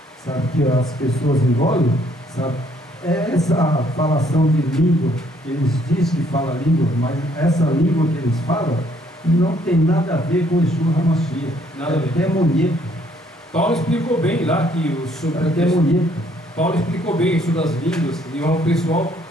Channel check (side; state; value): both; normal; correlation 0.65